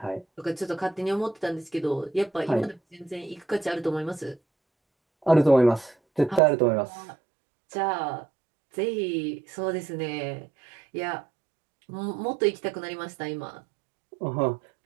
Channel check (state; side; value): drops out; left; at 6.4 s